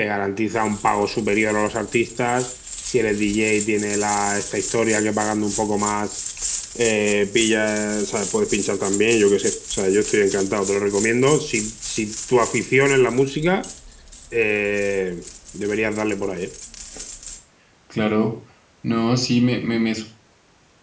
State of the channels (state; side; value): identical; both; correlation 1.00